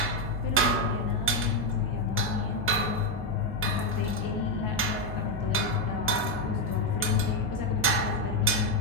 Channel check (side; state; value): both; normal; correlation 0.06